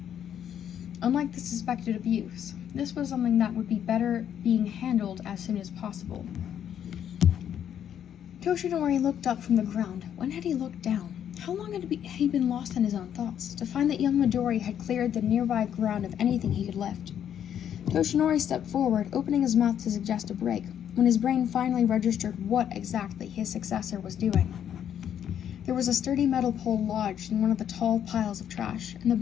Unlike the suspected abuse, this was something that would be better being handled as soon as possible. Toshinori looked up from the ground. When had he looked down? How long had he been lost in his own thoughts, to find that young Midori had cleared the nearby ground of anything he could lift? Toshinori stepped forward, opening his mouth to suggest a break, when his brain finally registered what exactly his successor was doing. There was a sturdy metal pole lodged in one of the tall piles of trash, and the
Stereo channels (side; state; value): right; quieter; 9.5 dB